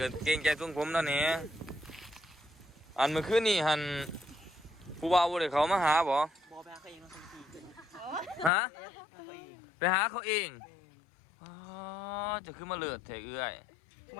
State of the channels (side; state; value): right; drops out; at 8.5 s